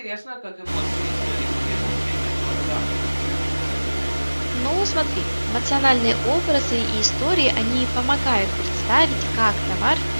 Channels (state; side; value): inverted; both; correlation -1.00